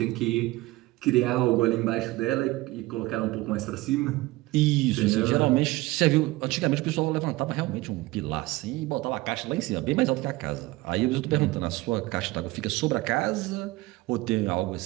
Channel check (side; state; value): left; quieter; 20.0 dB